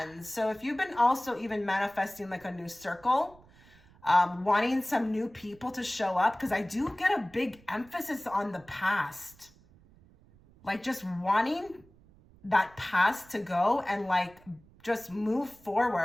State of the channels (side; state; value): right; noise; rumble, 27 dB below the sound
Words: So if you've been also even manifesting like a new circle, wanting some new people to show up, because I do get a big emphasis on the past, like just wanting that past to go and like just move